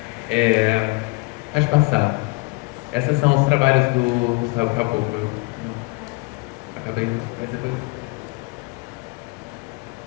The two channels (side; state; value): right; quieter; 28.4 dB